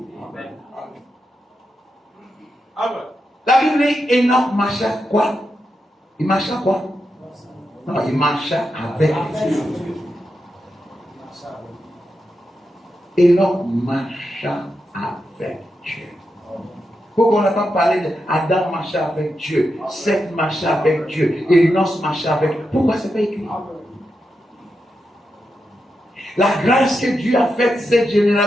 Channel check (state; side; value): normal; both; correlation 0.87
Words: La Bible dit Enoch marcha quoi? Il marcha quoi? Non, il marcha avec Dieu. Enoch marcha avec Dieu. Pourquoi on n'a pas parlé d'Adam marcha avec Dieu, Seth marcha avec Dieu, Enoch marcha avec Dieu? Pourquoi c'est pas écrit? La grâce que Dieu a faite cette